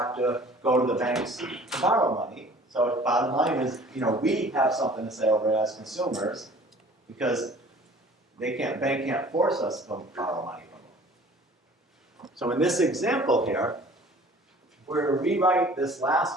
to go to the banks to borrow money. So the bottom line is, we have something to say over it as consumers because bank can't force us to borrow money from them. So in this example here, we're going to rewrite this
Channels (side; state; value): both; normal; correlation 0.49